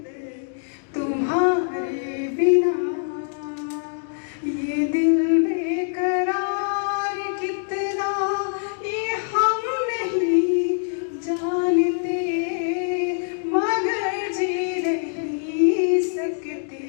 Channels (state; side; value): silent; right; digital silence